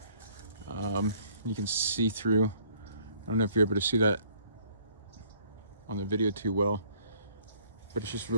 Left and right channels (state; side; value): inverted; both; correlation -0.61